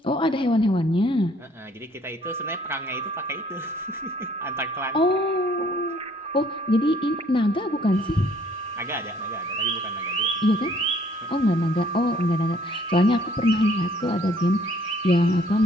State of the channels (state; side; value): normal; both; correlation 0.61